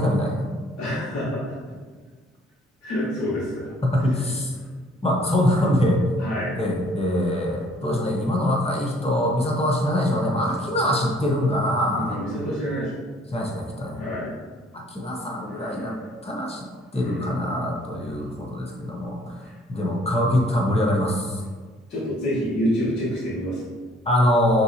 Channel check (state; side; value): normal; both; correlation 0.59